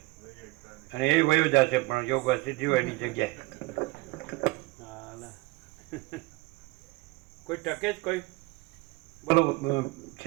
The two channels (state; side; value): quieter; left; 22.9 dB